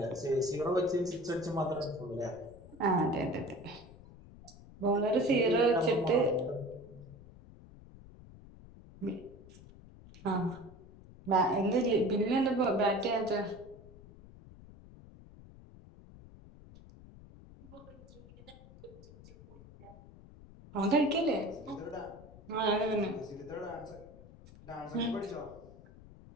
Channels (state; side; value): noise; left; rumble, 20 dB below the sound